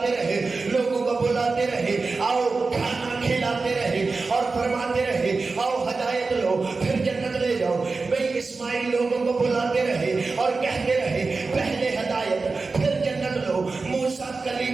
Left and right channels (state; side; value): quieter; left; 4.0 dB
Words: رہے، لوگوں کو بلاتے رہے آؤ کھانا کھلاتے رہے اور فرماتے رہے آؤ ہدایت لو پھر جنت لے جاؤ۔ بھئی اسماعیل لوگوں کو بلاتے رہے اور کہتے رہے پہلے ہدایت پھر جنت لو۔ موسیٰ